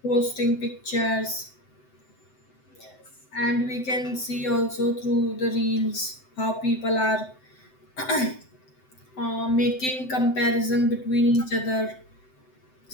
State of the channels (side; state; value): right; late; 7.8 ms